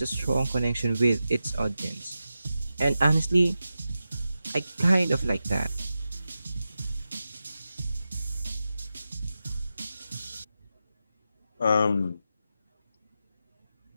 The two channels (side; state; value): both; inverted; correlation -0.91